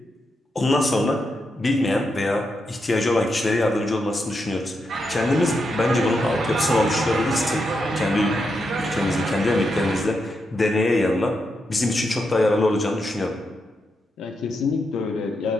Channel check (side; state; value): both; normal; correlation 0.84